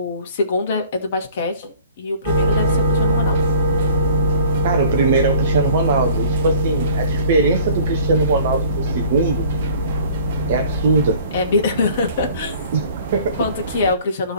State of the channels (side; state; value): both; inverted; correlation -0.50